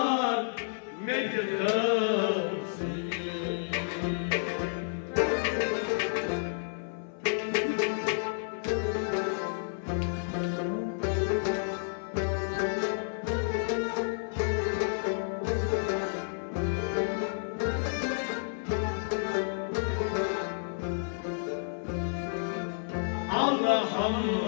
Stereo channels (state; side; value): silent; right; 57 dB below the other